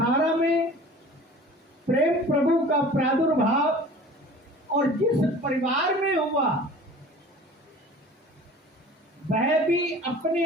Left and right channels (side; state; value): both; normal; correlation 0.43